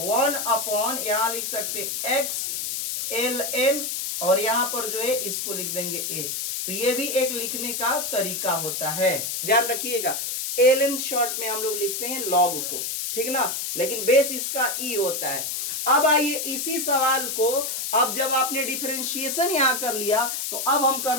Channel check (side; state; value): left; noise; hiss, 3 dB below the sound